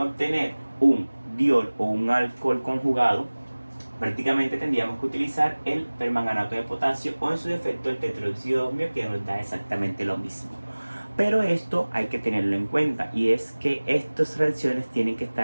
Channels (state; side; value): inverted; both; correlation -1.00